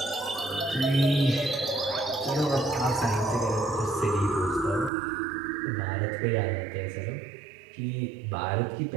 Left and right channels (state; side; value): drops out; left; at 4.9 s